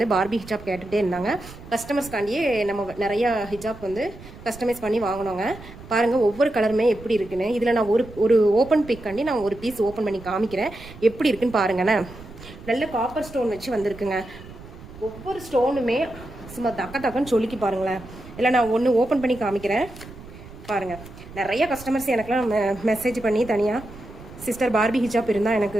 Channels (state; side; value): noise; right; rumble, 17 dB below the sound